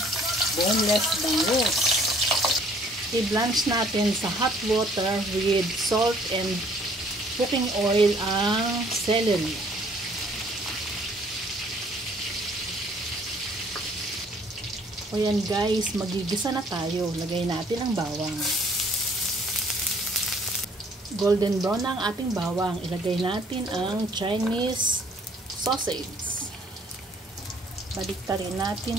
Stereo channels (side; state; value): both; normal; correlation 0.59